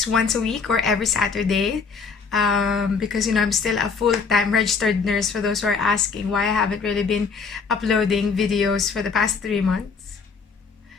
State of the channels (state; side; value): quieter; right; 5.1 dB